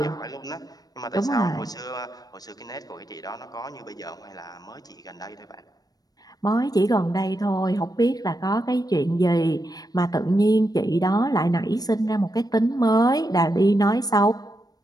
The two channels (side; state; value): right; late; 0.19 ms